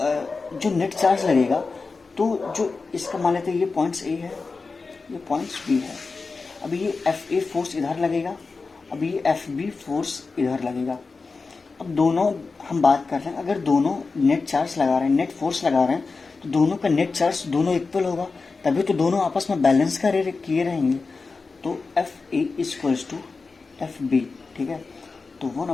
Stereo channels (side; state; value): right; quieter; 4.2 dB